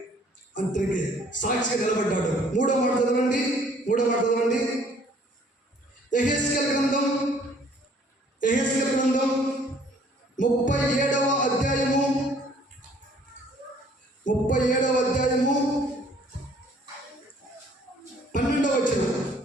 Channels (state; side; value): normal; both; correlation 0.58